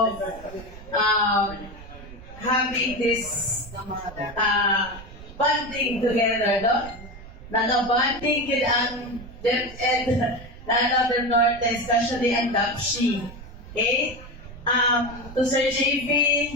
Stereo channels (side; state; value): right; noise; rumble, 16 dB below the sound